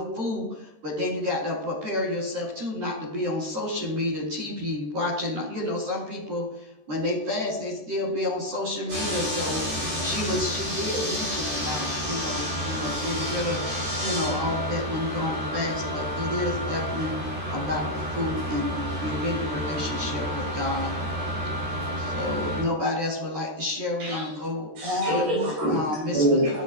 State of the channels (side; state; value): left; late; 13 ms